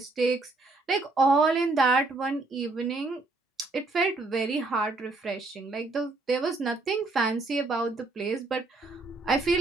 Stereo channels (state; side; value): quieter; left; 3.3 dB